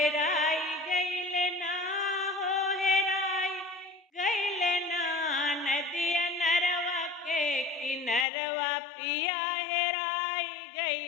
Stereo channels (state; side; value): drops out; right; at 8.2 s